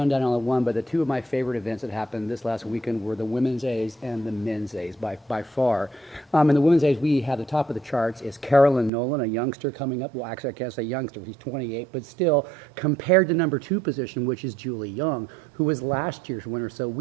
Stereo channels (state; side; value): drops out; left; at 8.9 s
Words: down on the one, but the two of my favorite events that happened this last weekend were the Women's A's and the Men's A's by far. In the Women's A's, we have the top of the charts is Carolyn Nolan, a youngster coming up. Well, actually, I can't say youngster. He's 28, but still, compared to number 2 position, which is Julie Young, who was last year's winner. So